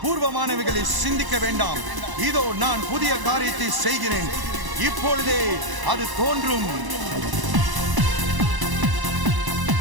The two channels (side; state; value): left; late; 1.0 ms